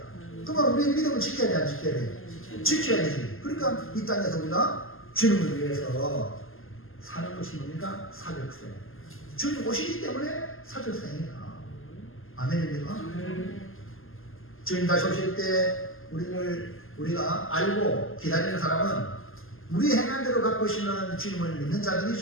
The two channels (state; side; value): late; right; 0.60 ms